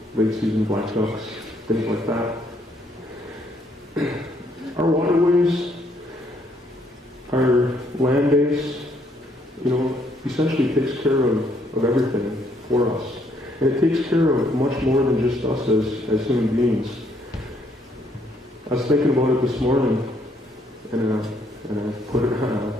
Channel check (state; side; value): normal; both; correlation 0.69